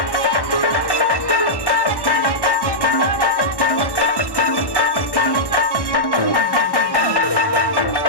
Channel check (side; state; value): right; late; 1.1 ms